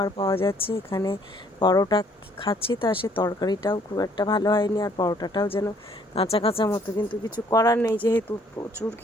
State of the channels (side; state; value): both; normal; correlation 0.62